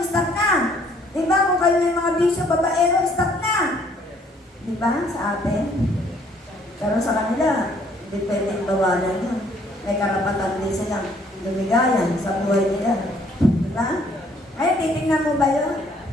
stop na. Diba? Kung kayo may mga bisyo, babaero, stop na. Diba? Sa atin. Pero sa kanila, hindi pwedeng bawalan yun. May karapatan din silang lumigayan sa buhay nila. Diba? Ay, titignan mo ba yun?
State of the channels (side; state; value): both; normal; correlation 0.62